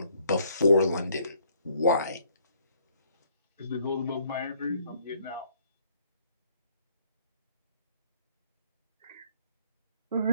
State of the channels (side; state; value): both; inverted; correlation -0.65